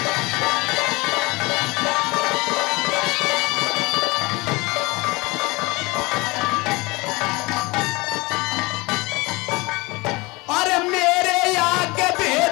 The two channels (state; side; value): quieter; right; 24.2 dB